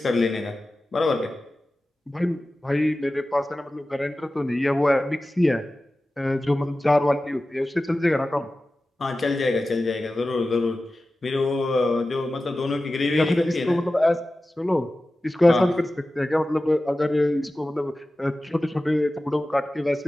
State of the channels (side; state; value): both; normal; correlation 0.95